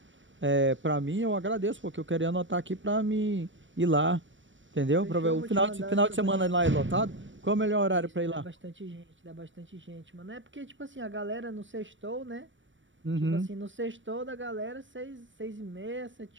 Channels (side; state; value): left; late; 0.55 ms